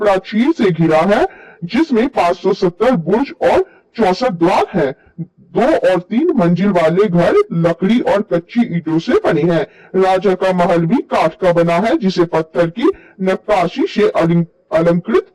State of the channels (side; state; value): both; identical; correlation 1.00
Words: से घिरा है, जिसमें 570 बुर्ज और 64 द्वार हैं। 2 और 3 मंजिल वाले घर लकड़ी और कच्ची ईंटों से बने हैं। राजा का महल भी काठ का बना है, जिसे पत्थर की नक्काशी से अलंकृत